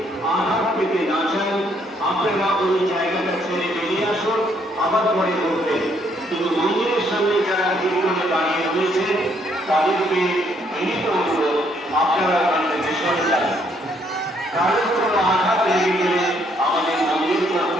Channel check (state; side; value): normal; both; correlation 0.69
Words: আঘাত পেতে না চান, আপনারা ওই জায়গাটা ছেড়ে বেরিয়ে আসুন, আবার পরে করবেন। কিন্তু মন্দিরের সামনে যারা ভিড় করে দাঁড়িয়ে রয়েছে, তাদেরকে বিনীত অনুরোধ, আপনারা ওখান থেকে সরে যান। কারোর কোনো আঘাত লেগে গেলে আমাদের মন্দির